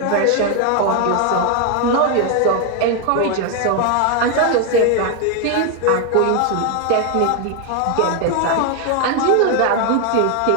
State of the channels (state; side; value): different; both; correlation 0.01